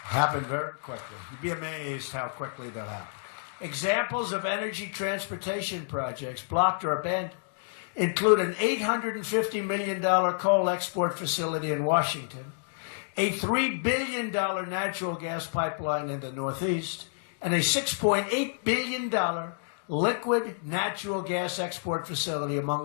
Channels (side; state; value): right; silent; digital silence